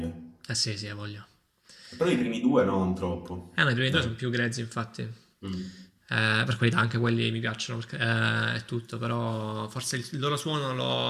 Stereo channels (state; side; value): identical; both; correlation 1.00